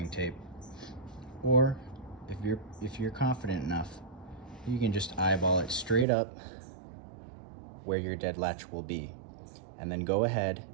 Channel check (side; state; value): left; drops out; at 6.1 s